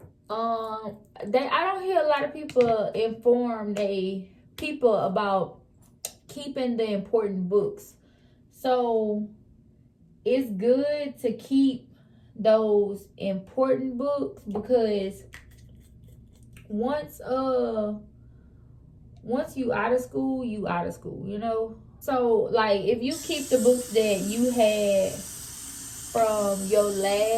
I don't hear a lot of people inform people about keeping the important books. So it's good to keep those important books, because once you out of school, you out of school, you know. So like if you keep the books that you had from your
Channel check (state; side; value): identical; both; correlation 1.00